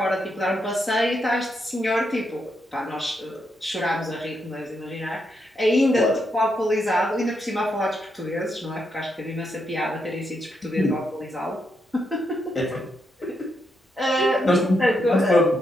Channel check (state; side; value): normal; both; correlation 0.81